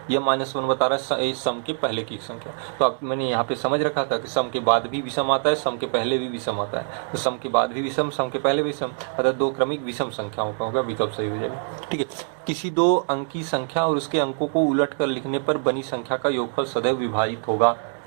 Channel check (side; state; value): left; silent; 61 dB below the other